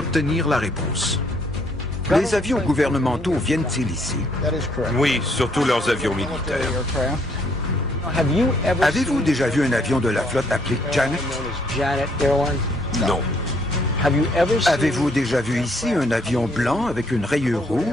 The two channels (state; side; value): normal; both; correlation 0.67